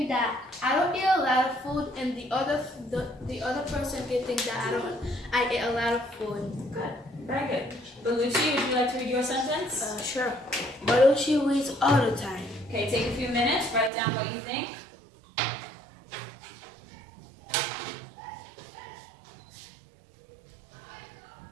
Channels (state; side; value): drops out; left; at 13.9 s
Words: that I don't eat a lot of food, and the other person can think that I eat a lot of food. Good. Very good. Belushi, would you like to read your sentence? Sure. Belushi reads all the time. Okay, take a few minutes, write down what you think.